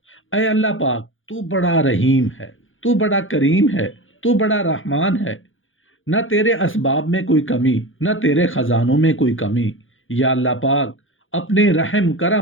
اے اللہ پاک، تو بڑا رحیم ہے، تو بڑا کریم ہے، تو بڑا رحمان ہے۔ نہ تیرے اسباب میں کوئی کمی، نہ تیرے خزانوں میں کوئی کمی۔ یا اللہ پاک، اپنے رحم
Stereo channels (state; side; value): late; right; 0.58 ms